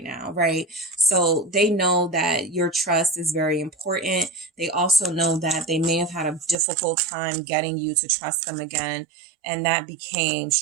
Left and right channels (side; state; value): left; drops out; at 6.6 s